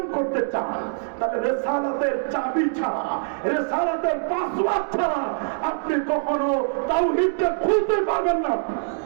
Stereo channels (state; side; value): silent; left; digital silence